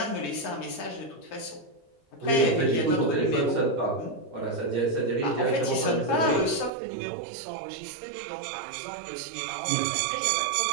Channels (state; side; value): drops out; left; at 6.7 s